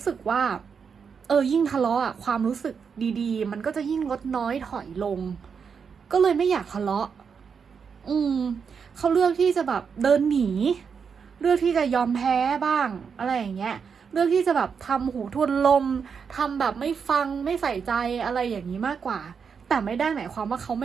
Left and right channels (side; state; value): left; quieter; 6.3 dB